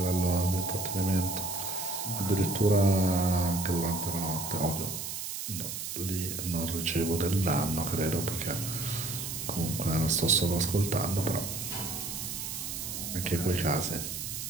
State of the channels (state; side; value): noise; right; hiss, 5 dB below the sound